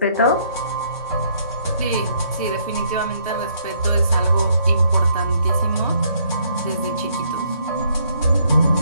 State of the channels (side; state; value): both; inverted; correlation -0.68